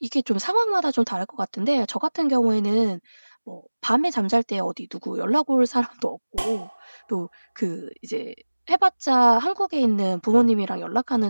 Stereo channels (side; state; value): both; inverted; correlation -1.00